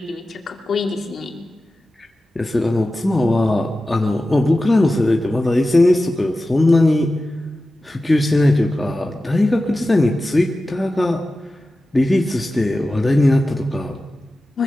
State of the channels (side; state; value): both; normal; correlation 0.94